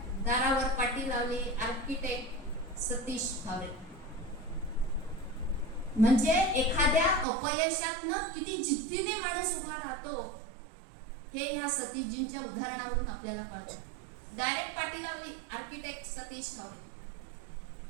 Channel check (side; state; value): left; drops out; at 7.2 s